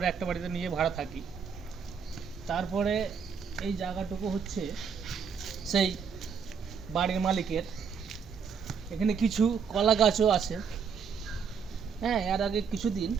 একটা বাড়িতে নিয়ে ভাড়া থাকি। তারপরে এই জায়গাটুকু হচ্ছে সেই বাড়ির মালিকের। এখানে কিছু কলা গাছও আছে। হ্যাঁ, এর আগে কিছুদিন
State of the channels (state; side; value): quieter; left; 6.3 dB